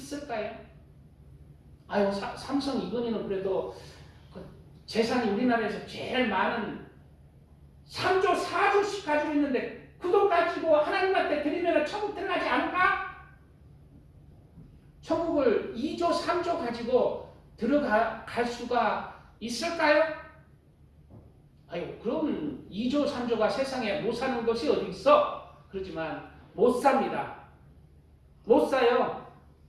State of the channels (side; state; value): both; identical; correlation 1.00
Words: 아유, 삼성 이건희는 그래도 그 재산이 우리나라에서 제일 많은 3조 4조씩 가지고 있는데 그 돈 가지고 하나님한테 드리면 천국 들어가지 않을까? 천국을 2조 3조 가지고 들어갈 수가 있을까요? 아유, 그럼 2조 3조가 세상에 못 사는 것이 어디 있어? 그러지만 못 삽니다. 못 사요.